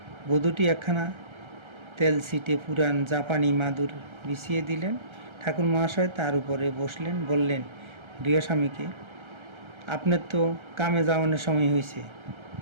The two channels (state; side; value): late; left; 1.3 ms